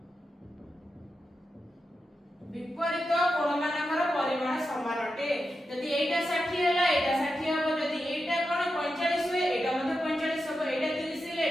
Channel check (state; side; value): normal; both; correlation 0.89